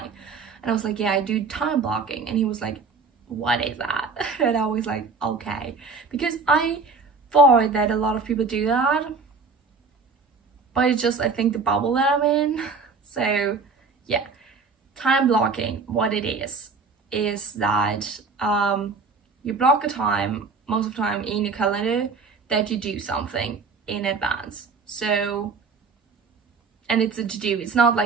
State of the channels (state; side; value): quieter; left; 4.6 dB